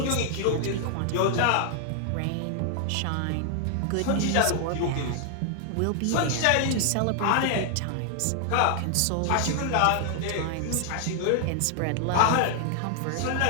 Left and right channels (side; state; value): both; different; correlation 0.00